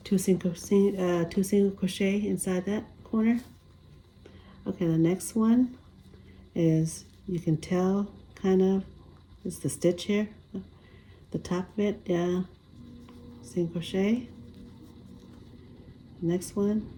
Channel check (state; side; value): identical; both; correlation 1.00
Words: two single crochet inside that corner. Okay, the next one is, you can tell kind of, it's the stitch here, the top of it, yeah, single crochet. Next one.